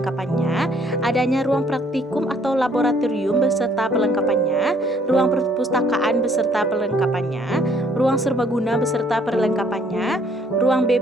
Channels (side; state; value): both; normal; correlation 0.64